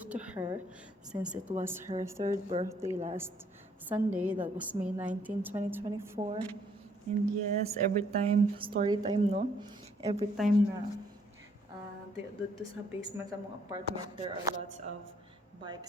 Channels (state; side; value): normal; both; correlation 0.67